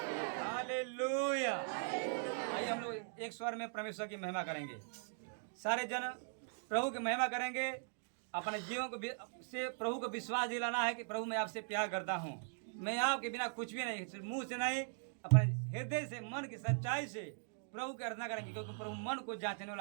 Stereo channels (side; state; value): left; silent; digital silence